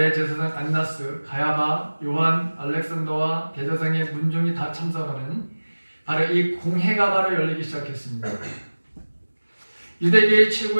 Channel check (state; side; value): inverted; both; correlation -1.00